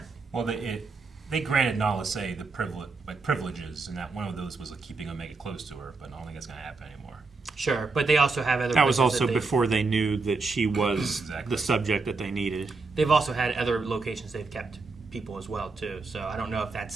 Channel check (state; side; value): quieter; left; 4.0 dB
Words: Well, they granted Nala Se the privileges, and that one of those was keeping Omega close to her, but I don't think it's going to happen anymore. Sure, but they also have other. That was places also that before they knew that she was Exactly. the subject that they needed. They've also had other locations they've kept people as well too. So I don't know if that's